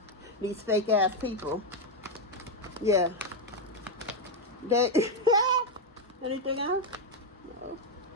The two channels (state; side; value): normal; both; correlation 0.04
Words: These fake ass people. Yeah. They anything else? No.